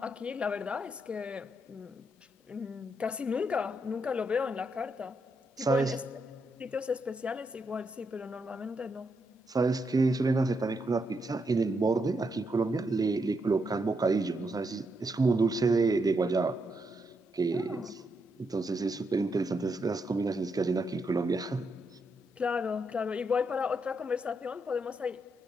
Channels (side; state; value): both; normal; correlation 0.80